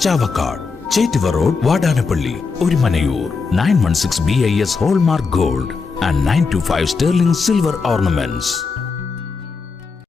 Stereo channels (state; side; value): quieter; right; 4.8 dB